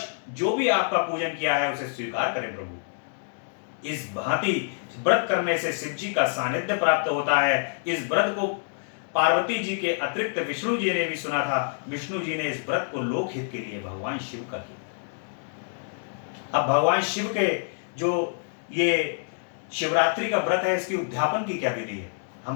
जो भी आपका पूजन किया है उसे स्वीकार करें प्रभु। इस भांति व्रत करने से शिव जी का सानिध्य प्राप्त होता है। इस व्रत को पार्वती जी के अतिरिक्त विष्णु जी ने भी सुना था। विष्णु जी ने इस व्रत को लोकहित के लिए भगवान शिव का किया। अब भगवान शिव के जो ये शिवरात्रि का व्रत है, इसकी उद्यापन की क्या विधि है? हम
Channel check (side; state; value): right; silent; digital silence